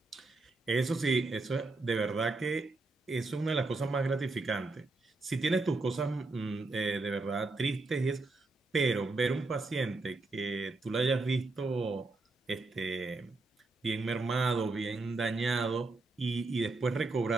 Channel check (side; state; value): left; quieter; 3.4 dB